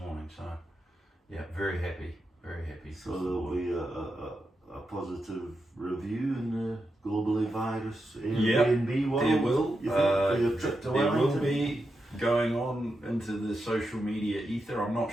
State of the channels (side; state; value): both; normal; correlation 0.87